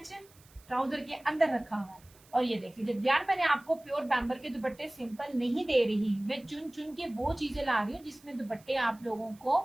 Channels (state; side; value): noise; right; hiss, 27 dB below the sound